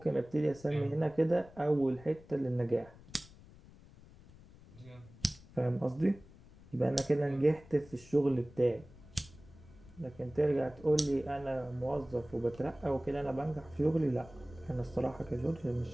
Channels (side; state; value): left; noise; rumble, 21 dB below the sound